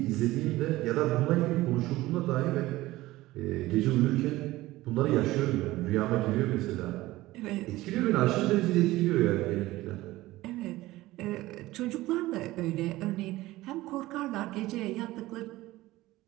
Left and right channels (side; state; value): left; quieter; 17.7 dB